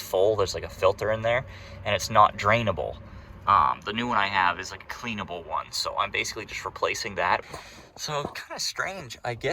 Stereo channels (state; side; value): identical; both; correlation 1.00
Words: There's like a filter in there, and it's not drainable. The new one I have is like a cleanable one, so I'm basically just replacing that. So kind of strange. I